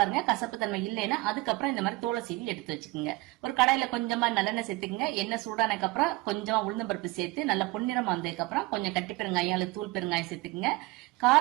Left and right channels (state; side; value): quieter; left; 21.2 dB